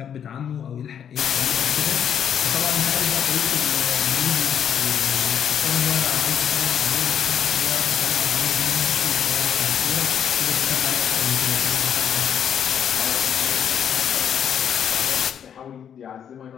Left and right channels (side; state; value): right; quieter; 8.7 dB